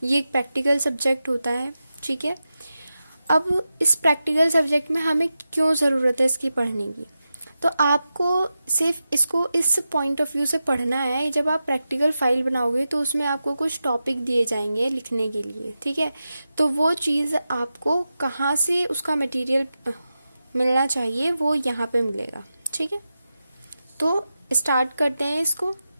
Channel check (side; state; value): both; inverted; correlation -0.91